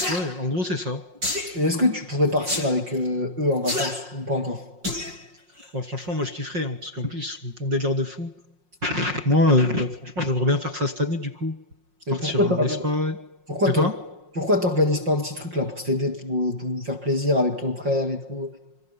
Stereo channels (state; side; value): late; left; 5.5 ms